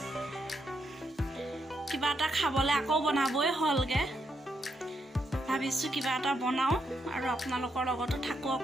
কিবা এটা খাবলৈ আকৌ বনাবই হ'লগৈ। ভাবিছোঁ কিবা এটা বনাওঁ আৰু আপোনালোকৰ লগতো থাকোঁ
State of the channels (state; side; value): normal; both; correlation 0.80